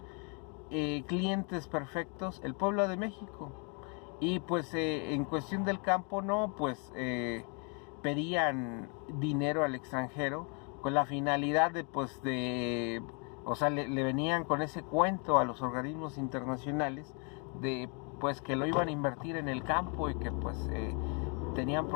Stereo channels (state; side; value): quieter; right; 36.7 dB